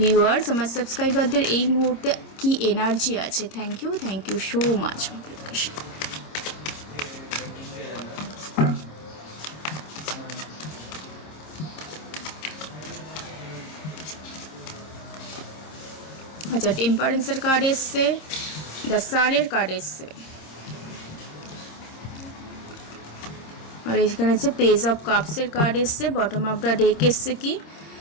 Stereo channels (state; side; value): late; right; 26 ms